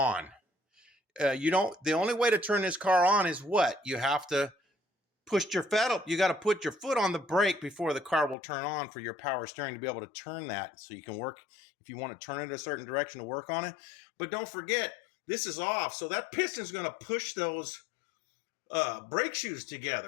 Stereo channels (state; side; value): drops out; right; at 8.3 s